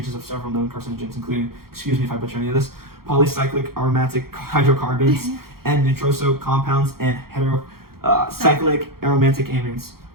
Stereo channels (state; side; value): late; left; 0.94 ms